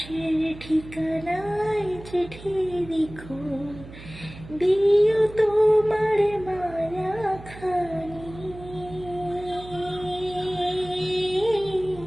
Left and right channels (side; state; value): right; noise; hum, 16 dB below the sound